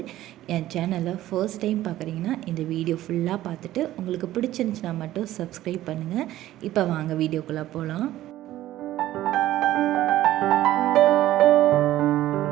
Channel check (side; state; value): left; quieter; 14.4 dB